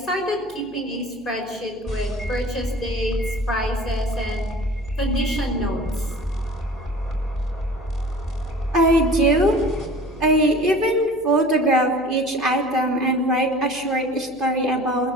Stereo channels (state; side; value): noise; left; hum, 25 dB below the sound